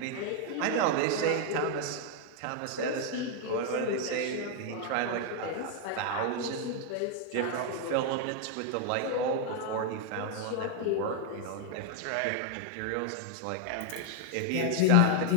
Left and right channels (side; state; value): both; different; correlation 0.00